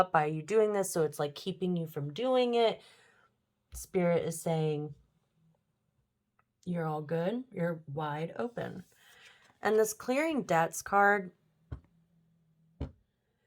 by you doing this. So it's like keeping you from doing it. Spirit is saying you're all good. You're wide open. And this clearing debts card,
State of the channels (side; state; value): both; identical; correlation 1.00